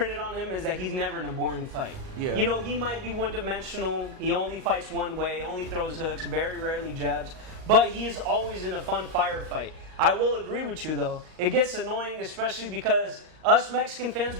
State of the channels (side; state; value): left; late; 38 ms